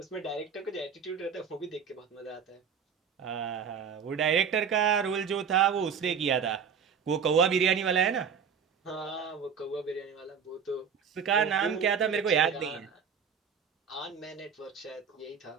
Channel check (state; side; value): quieter; left; 6.8 dB